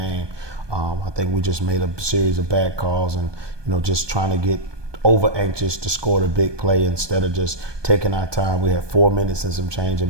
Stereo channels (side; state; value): left; late; 1.2 ms